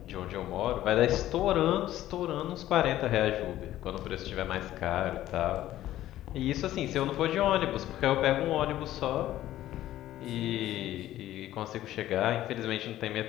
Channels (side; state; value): right; quieter; 13.8 dB